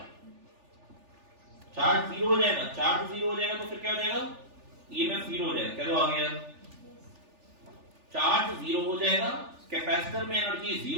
चार्ज 0 हो जाएगा, चार्ज 0 हो जाएगा तो फिर क्या हो जाएगा, ईएमएफ जीरो हो जाएगा। क्या तो आ गया, चार्ज जीरो हो जाएगा, कैपेसिटर में एनर्जी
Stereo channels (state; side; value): late; left; 3.4 ms